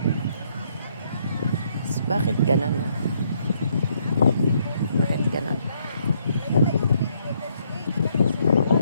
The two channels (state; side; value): inverted; both; correlation -0.71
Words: Bakit ganun? Bakit ganun?